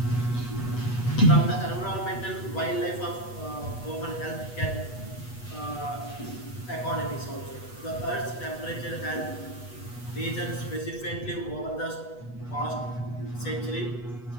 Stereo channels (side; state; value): right; late; 8.2 ms